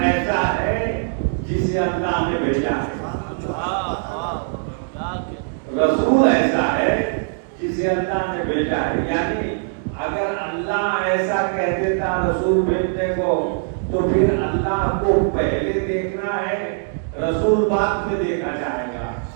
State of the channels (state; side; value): silent; left; digital silence